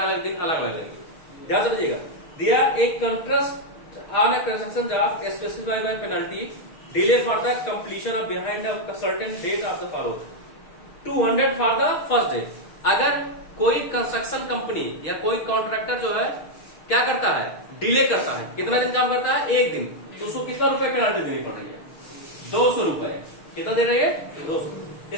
अलग दिन अलग अलग लगेगी, ध्यान समझिएगा। दिया एक contrast on a construction job specified by penalty delay for the completion of behind the certain date of the follow 200 for the first day. अगर कोई कंस्ट्रक्शन कंपनी या कोई कॉन्ट्रैक्टर जो है क्या करता है, डिले करता है। कितना दिन काम करता है, 1 दिन, तो उसको कितना रुपए पेनाल्टी देनी पड़ रही है, 200 रुपए। कितना दे रही है, 200।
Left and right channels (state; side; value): late; right; 6.3 ms